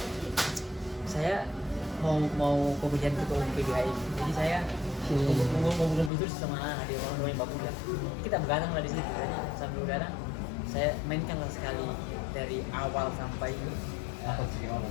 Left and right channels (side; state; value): right; drops out; at 6.1 s